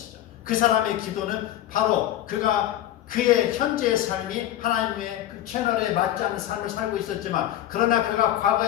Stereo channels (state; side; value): quieter; right; 12.8 dB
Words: 그 사람의 기도는 바로 그의 현재의 삶이 하나님의 그 채널에 맞지 않는 삶을 살고 있었지만, 그러나 그가